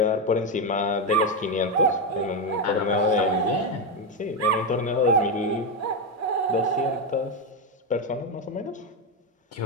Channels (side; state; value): both; normal; correlation 0.09